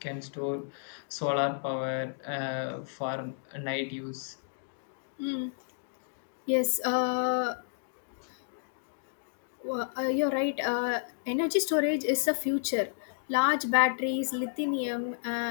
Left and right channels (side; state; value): right; silent; digital silence